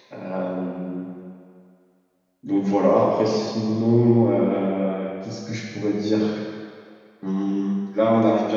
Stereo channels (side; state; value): both; identical; correlation 1.00